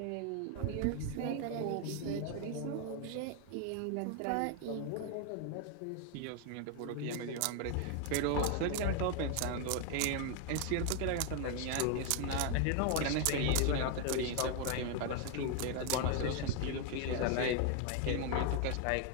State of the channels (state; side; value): different; both; correlation 0.01